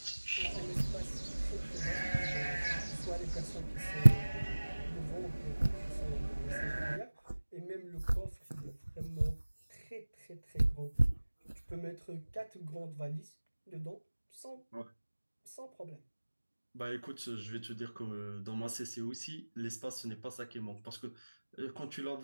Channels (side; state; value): both; inverted; correlation -1.00